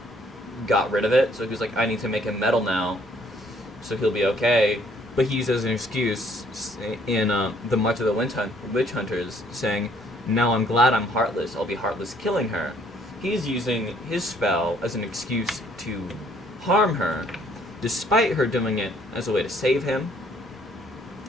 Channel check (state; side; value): normal; both; correlation 0.63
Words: got rid of it. So he was like, I need to make him metal now, so he'll be okay. But he uses an excuse in the March of the Witch Hunters, saying, now I'm glad I'm heartless. I'll be heartless killing her. He's using his spell as an excuse to harm her, despite her doing it as a way to save him.